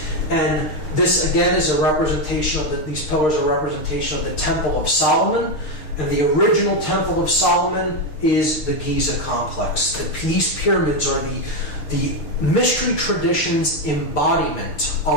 And this, again, is a representation of these pillars are a representation of the Temple of Solomon. And the original Temple of Solomon is the Giza complex. These pyramids are the mystery tradition's embodiment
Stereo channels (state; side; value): late; right; 6.5 ms